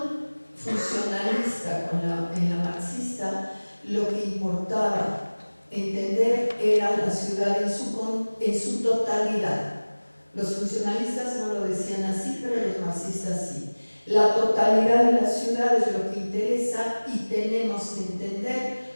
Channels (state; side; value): inverted; both; correlation -1.00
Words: funcionalista como en la marxista, lo que importaba entender era la ciudad en su totalidad. Los funcionalistas no lo decían así, pero los marxistas sí. La totalidad de la ciudad es lo que interesa y tenemos que entender